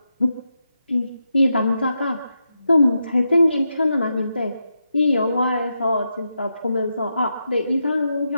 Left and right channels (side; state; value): both; inverted; correlation -0.86